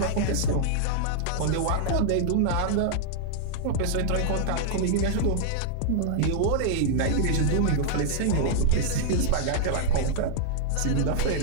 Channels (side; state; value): both; different; correlation -0.01